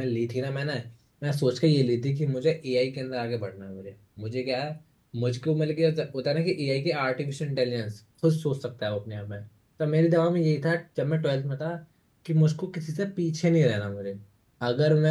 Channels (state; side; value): identical; both; correlation 1.00